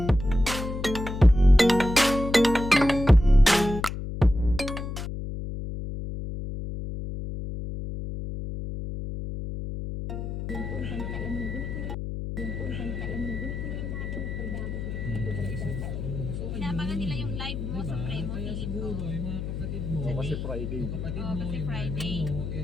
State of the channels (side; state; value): left; noise; hum, 5 dB below the sound